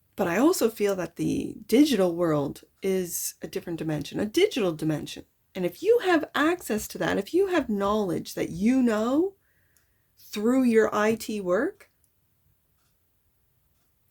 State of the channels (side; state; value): both; identical; correlation 1.00